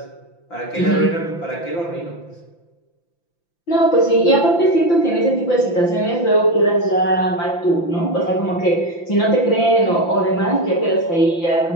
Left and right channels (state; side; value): late; right; 5.9 ms